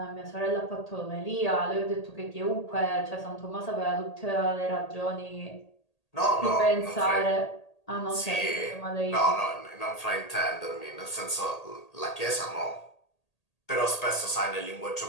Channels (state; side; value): late; right; 1.8 ms